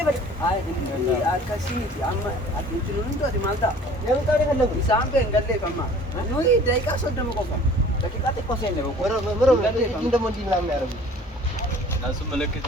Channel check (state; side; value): normal; both; correlation 0.49